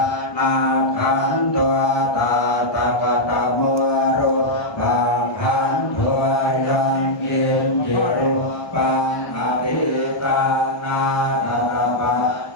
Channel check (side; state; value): right; late; 1.2 ms